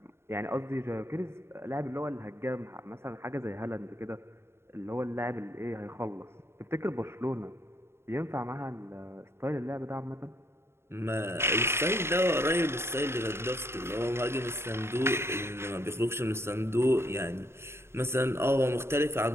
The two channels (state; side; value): late; left; 0.12 ms